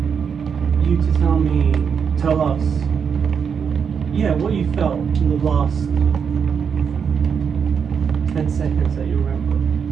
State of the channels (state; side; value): quieter; left; 6.7 dB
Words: you to tell us, what you felt in the last 10 seconds that you remember.